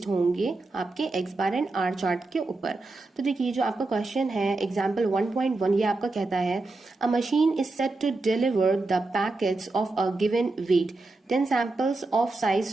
होंगे आपके X bar and R chart के ऊपर। तो देखिए जो आपका क्वेश्चन है एग्जाम्पल 1.1, ये आपका कहता है a machine is set to deliver the packets of a given weight. 10 samples of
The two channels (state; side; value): quieter; left; 3.3 dB